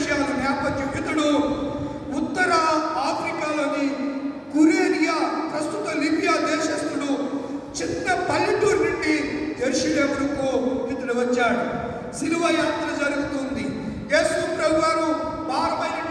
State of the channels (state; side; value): identical; both; correlation 1.00